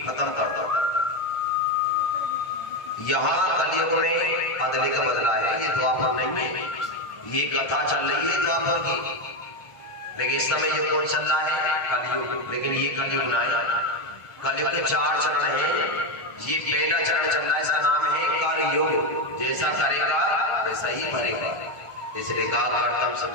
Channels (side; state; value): right; late; 1.5 ms